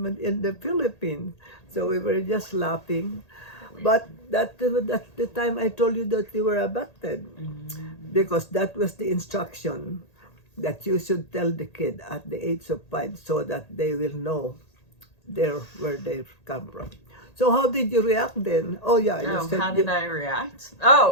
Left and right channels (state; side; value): late; right; 1.8 ms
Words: the Philippines. So we were just laughing. But that's the time I told you that you were abducted. Because that was the instruction that you should tell the kid at the age of 5 so that they will know where they come from. So how did you react then? Oh yeah, you said how did I react?